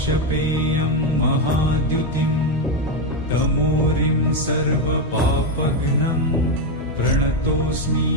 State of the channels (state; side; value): normal; both; correlation 0.06